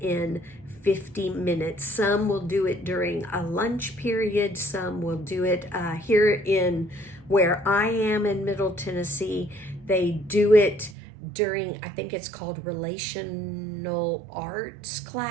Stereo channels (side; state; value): left; drops out; at 11.0 s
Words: 50 minutes. Some will do it during a lunch period. Some will do it here in where I am in Middle Tennessee. They do it during, I think it's called relational arts